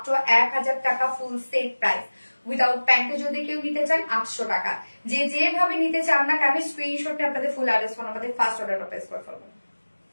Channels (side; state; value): both; inverted; correlation -1.00